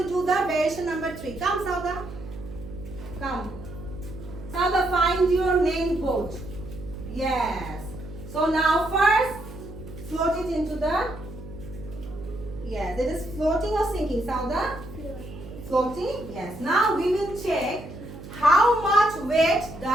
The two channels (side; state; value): right; noise; hum, 13 dB below the sound